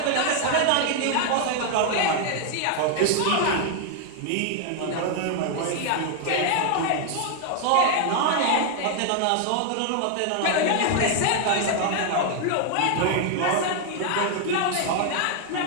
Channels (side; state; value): both; different; correlation 0.00